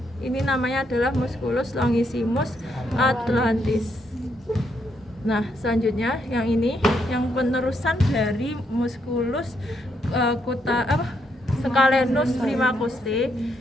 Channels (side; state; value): both; normal; correlation 0.76